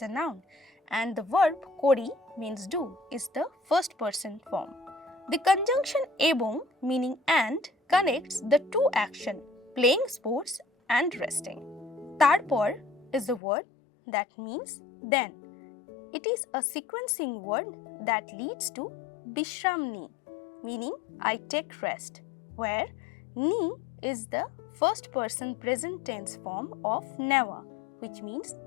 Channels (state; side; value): drops out; right; at 13.4 s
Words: a noun, and the verb kori means do is the first person form. The conjunction ebong, meaning and, connects the two action, playing sports and resting. Tarpor is the word that means then. It is a sequencing word that leads to Bishramni, meaning I take rest, where ni is the first person present tense form of never, which means